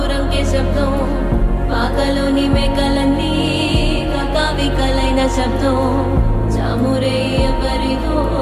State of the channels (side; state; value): both; identical; correlation 1.00